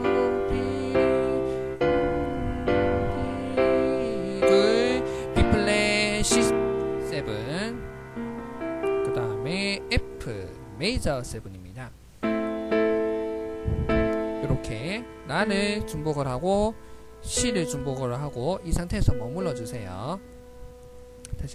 B플랫 C7 그 다음에 F 메이저 7입니다. 이렇게 라를 중복을 하고 C를 중복을 하고 이 상태에서 머물러 주세요.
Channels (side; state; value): both; identical; correlation 1.00